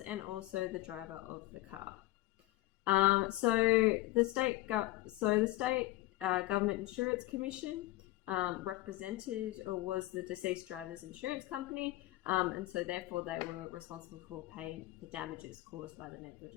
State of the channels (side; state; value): right; quieter; 17.8 dB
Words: also the driver of the car. So the state government insurance commission represented or was the deceased driver's insurance company, and so therefore they were responsible for paying the damages caused by the